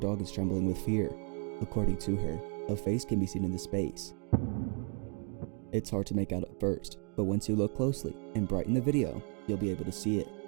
is trembling with fear. According to her, a face can be seen in the space. It's hard to make out at first, but once you look closely and brighten the video, you'll be able to see it.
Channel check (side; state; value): left; quieter; 37.9 dB